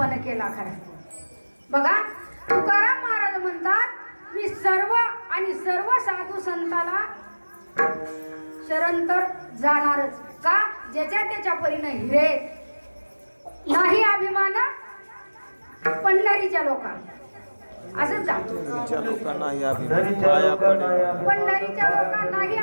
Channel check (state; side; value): inverted; both; correlation -1.00